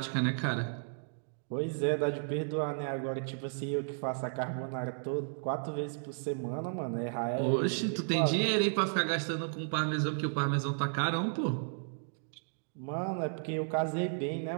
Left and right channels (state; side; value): silent; left; digital silence